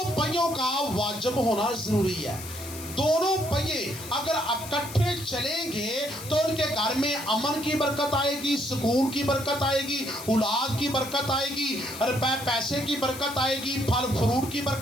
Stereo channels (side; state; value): left; noise; hiss, 12 dB below the sound